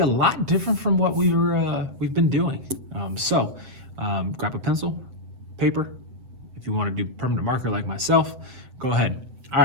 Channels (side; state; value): left; late; 7.5 ms